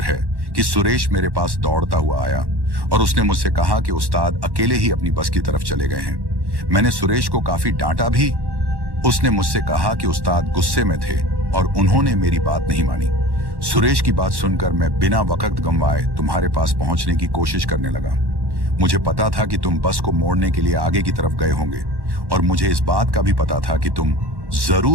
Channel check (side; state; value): left; late; 1.1 ms